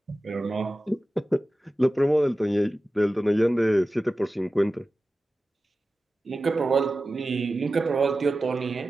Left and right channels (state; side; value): normal; both; correlation 0.94